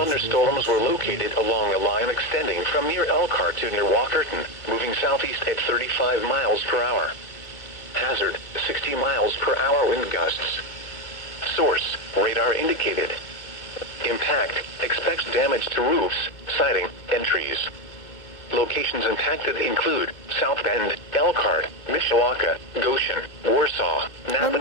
were located along a line extending from near Elkhart to near Walkerton, moving southeast at 35 miles per hour. Hazard, 60 miles per hour wind gusts. Source, radar indicated. Impact, expects damage to roofs, siding, and trees. Locations impacted include South Bend, Elkhart, Mishawaka, Goshen, Warsaw,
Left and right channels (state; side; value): late; right; 2.2 ms